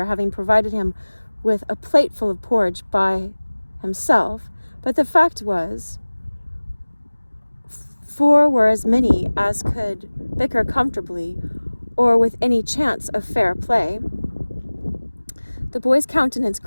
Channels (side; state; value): both; inverted; correlation -1.00